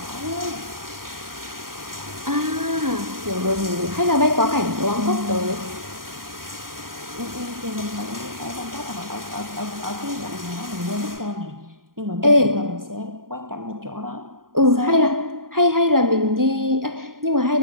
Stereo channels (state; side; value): late; left; 0.91 ms